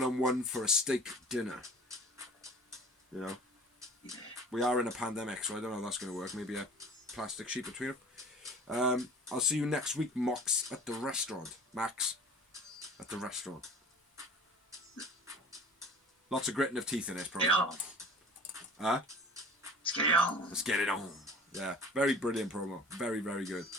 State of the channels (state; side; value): normal; both; correlation 0.43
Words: for a steak dinner. You know, we are in a pandemic, so I don't know how that's going to work. Maybe a plastic sheet between them. I'll see you next week, Max, at the restaurant. Max, at the restaurant. Lots of gritting of teeth in this promo. Huh? Let's get it on. Let's get it on. Yeah, very brilliant promo. Very, very good.